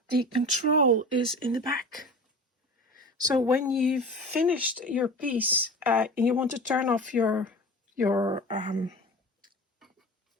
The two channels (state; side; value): normal; both; correlation 0.35